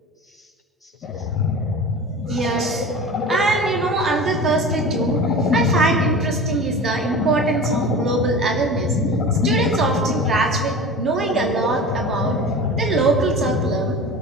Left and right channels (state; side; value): normal; both; correlation 0.34